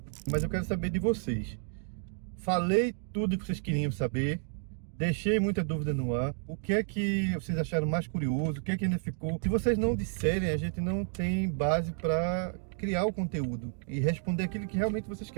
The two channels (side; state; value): left; silent; 57 dB below the other